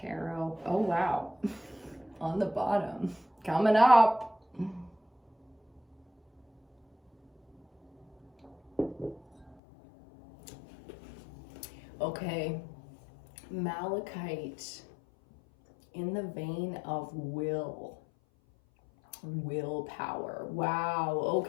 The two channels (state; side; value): drops out; right; at 9.6 s